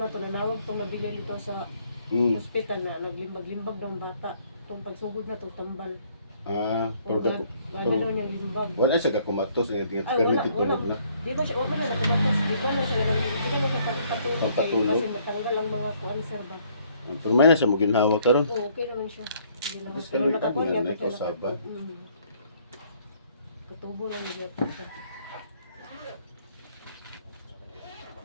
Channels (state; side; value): inverted; both; correlation -0.64